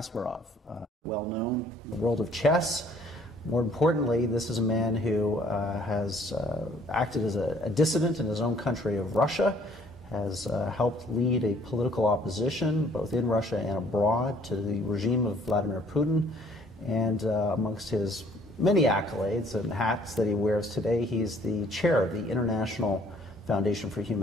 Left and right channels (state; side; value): normal; both; correlation 0.59